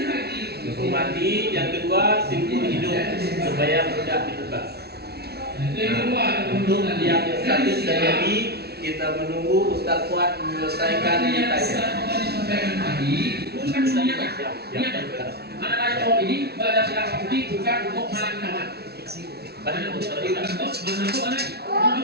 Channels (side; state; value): left; late; 0.47 ms